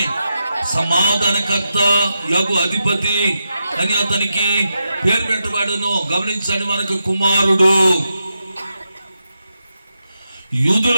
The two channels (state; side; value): inverted; both; correlation -0.86